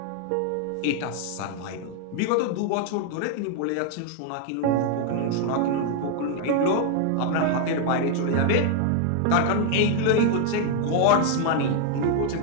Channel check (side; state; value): both; different; correlation 0.00